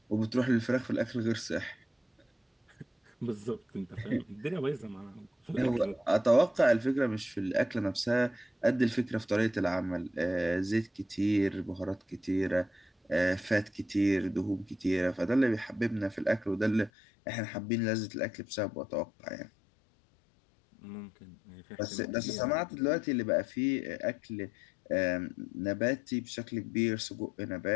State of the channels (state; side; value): drops out; right; at 16.9 s